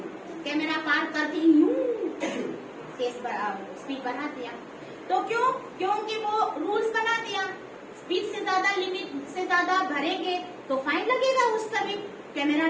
कैमरा पार करते ही यूं स्पीड बढ़ा दिया। तो क्यों? क्योंकि वो रूल्स बना दिया, स्पीड से ज्यादा, लिमिट से ज्यादा भरेंगे तो फाइन लगेगा, उस पर भी कैमरा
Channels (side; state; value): both; identical; correlation 1.00